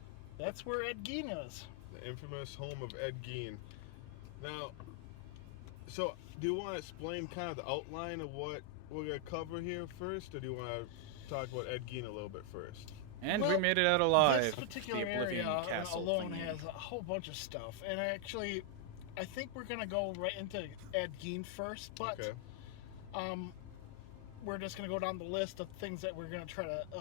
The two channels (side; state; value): both; different; correlation 0.00